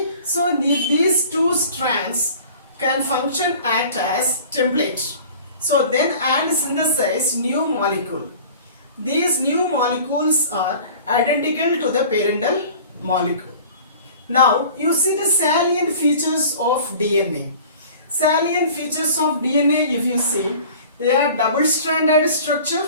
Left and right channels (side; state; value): both; inverted; correlation -0.44